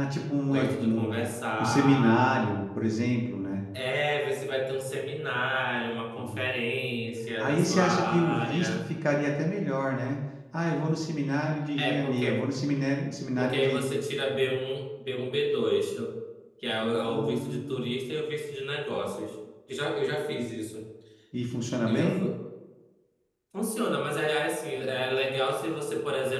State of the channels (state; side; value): identical; both; correlation 1.00